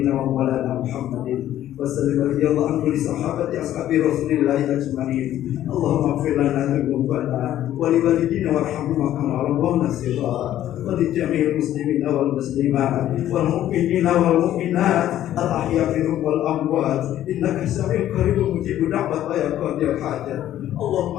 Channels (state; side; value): quieter; right; 12.4 dB